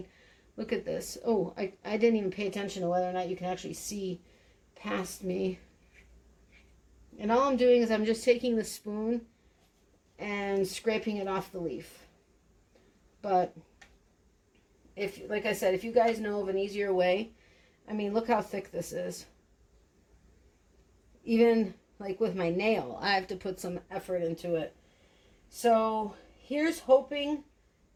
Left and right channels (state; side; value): identical; both; correlation 1.00